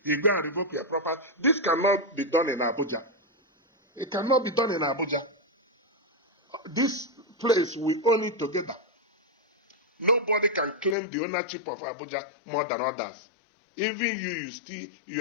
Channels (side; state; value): right; drops out; at 11.0 s